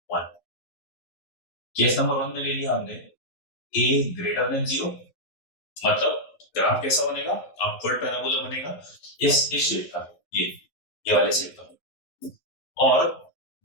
1, केस नंबर 1 में ले लिया हमने a ग्रेटर देन 0, मतलब ग्राफ कैसा बनेगा, अपवर्ड पैराबोला बनेगा इस शेप का, ये वाले शेप का। और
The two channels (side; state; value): right; late; 11 ms